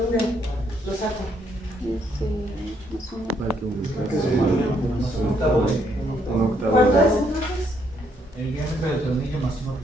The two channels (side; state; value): both; normal; correlation 0.71